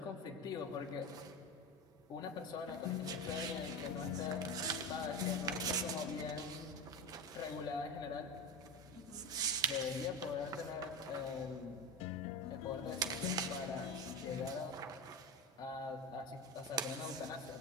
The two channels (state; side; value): normal; both; correlation 0.21